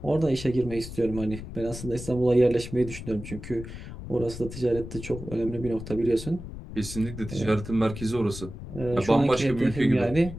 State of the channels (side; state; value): left; noise; rumble, 11 dB below the sound